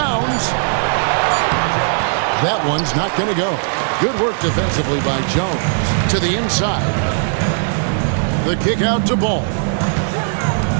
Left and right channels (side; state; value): left; silent; 56 dB below the other